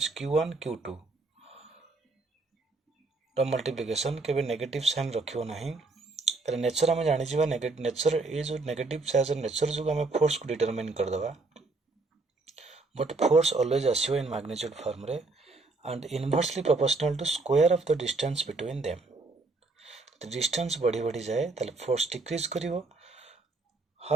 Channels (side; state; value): left; quieter; 3.5 dB